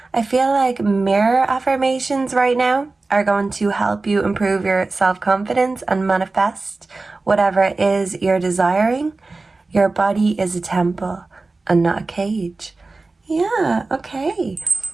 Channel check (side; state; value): left; quieter; 3.5 dB